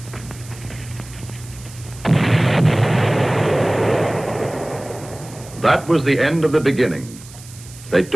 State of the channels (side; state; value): right; noise; hiss, 19 dB below the sound